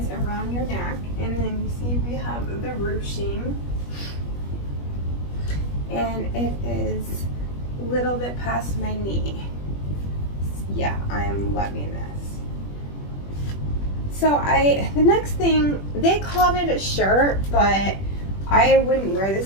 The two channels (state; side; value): late; right; 21 ms